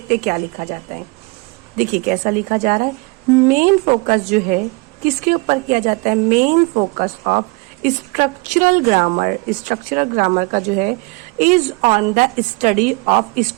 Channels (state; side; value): quieter; left; 27.5 dB